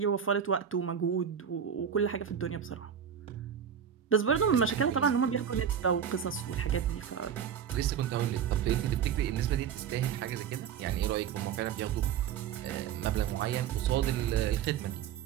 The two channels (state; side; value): quieter; left; 8.3 dB